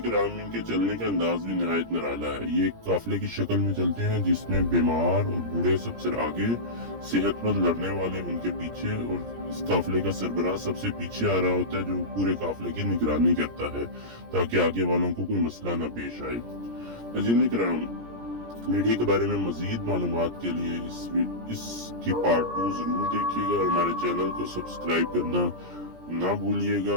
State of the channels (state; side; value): late; left; 17 ms